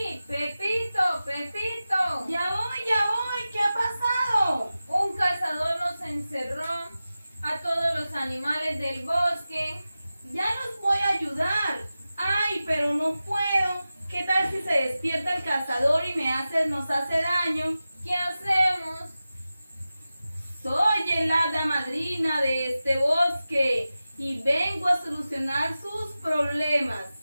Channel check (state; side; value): inverted; both; correlation -0.94